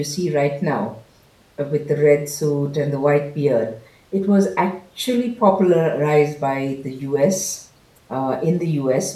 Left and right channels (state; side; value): identical; both; correlation 1.00